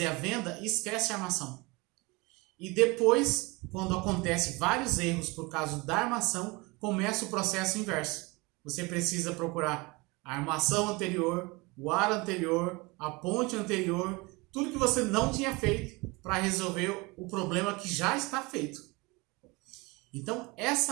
a venda e esquecem a armação. E depois, quando acontece vários erros por causa da armação, começa o processo inverso. Você precisa procurar a armação anterior, o ar anterior, a ponte anterior, tudo que você não tinha feito para resolver o problema que já está feito. Então,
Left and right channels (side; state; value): left; quieter; 25.3 dB